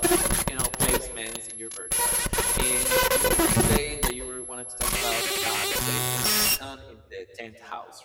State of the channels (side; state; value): both; identical; correlation 1.00